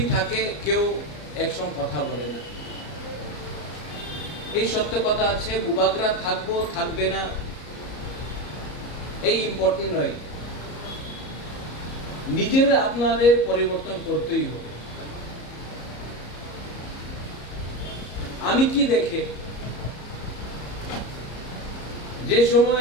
থাকে কেউ একসঙ্গে কথা বলে না। এই সত্য কথা আছে, বুবাগরা থাকবো থাকবে না এই ইম্পর্টেন্ট নয়। নিজের আপনাদের পরিবর্তন করতেই হবে। আমি কি দেখে যে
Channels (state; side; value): late; right; 34 ms